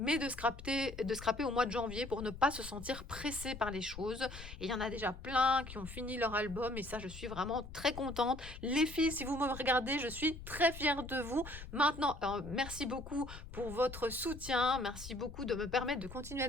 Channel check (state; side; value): noise; left; rumble, 12 dB below the sound